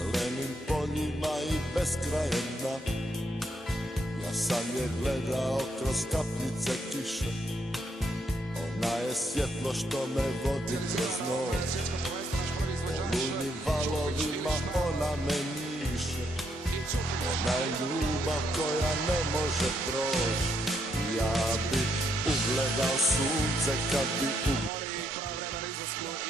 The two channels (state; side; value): normal; both; correlation 0.76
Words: poljima i beskrajem dna. Ja sam je gledao kroz kapljice kiše, ona je svjetlo što me vodi kroz noć. Olujnim valovima ona me njiše, ona je ljubav koja ne može proći. Ja bi ugledao sunce kad bi